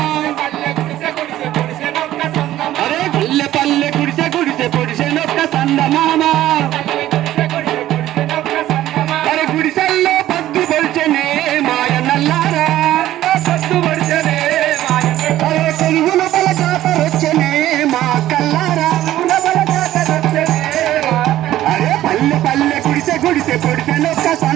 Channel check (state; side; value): quieter; left; 13.8 dB